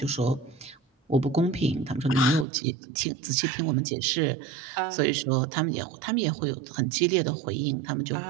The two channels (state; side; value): drops out; left; at 2.5 s